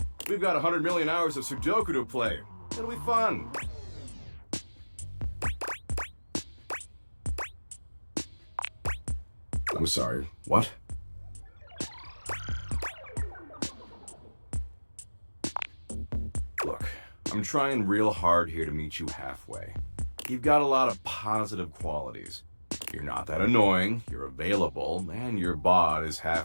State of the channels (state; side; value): inverted; both; correlation -1.00